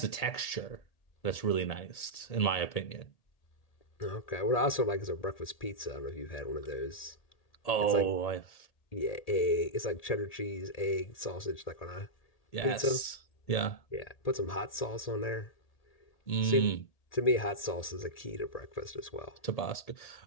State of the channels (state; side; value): late; right; 1.8 ms